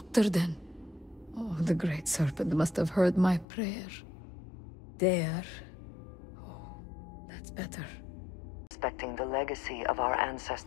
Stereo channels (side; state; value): right; drops out; at 3.5 s